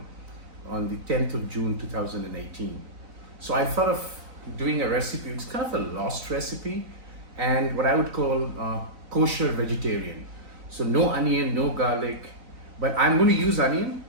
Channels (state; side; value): late; left; 3.8 ms